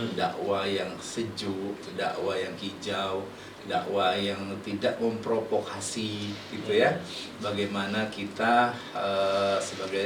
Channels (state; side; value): identical; both; correlation 1.00